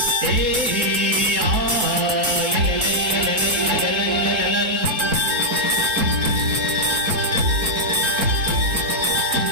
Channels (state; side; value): late; left; 3.7 ms